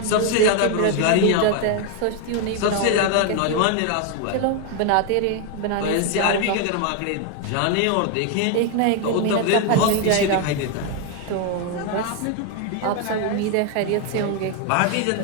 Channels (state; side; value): different; both; correlation 0.01